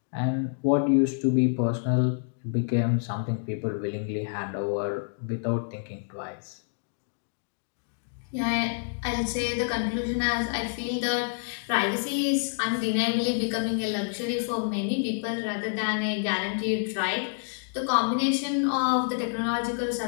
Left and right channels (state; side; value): silent; right; digital silence